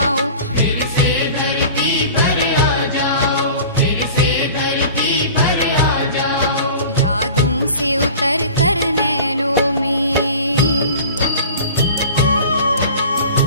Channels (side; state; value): both; inverted; correlation -0.40